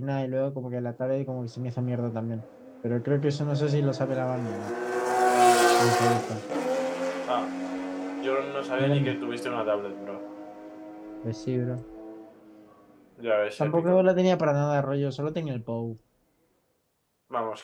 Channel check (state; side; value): identical; both; correlation 1.00